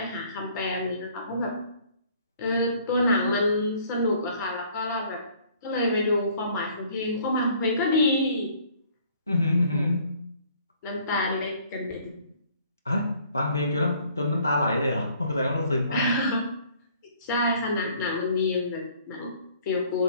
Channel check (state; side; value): inverted; both; correlation -0.58